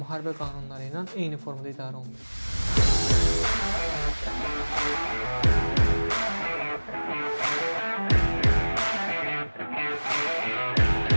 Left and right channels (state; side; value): inverted; both; correlation -1.00